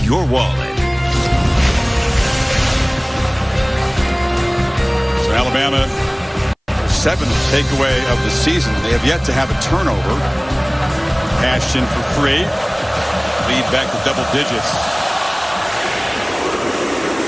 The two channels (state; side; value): identical; both; correlation 1.00